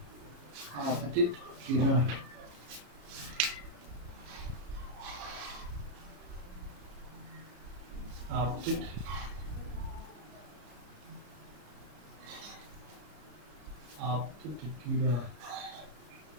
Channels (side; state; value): left; late; 34 ms